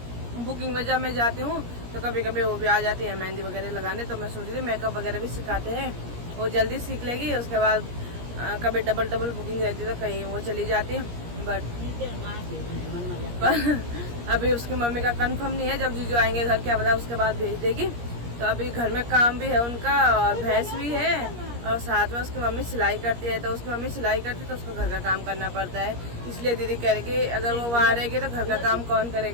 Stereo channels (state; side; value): late; left; 17 ms